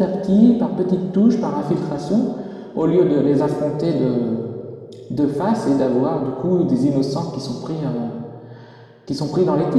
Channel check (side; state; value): both; identical; correlation 1.00